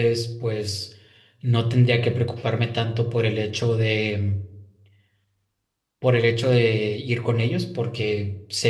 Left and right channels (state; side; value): identical; both; correlation 1.00